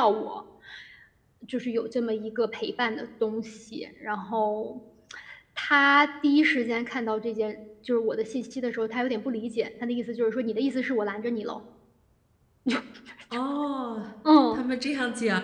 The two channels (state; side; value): identical; both; correlation 1.00